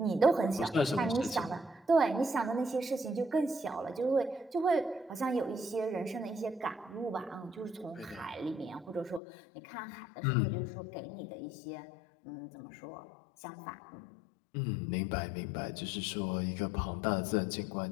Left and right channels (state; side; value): drops out; right; at 9.2 s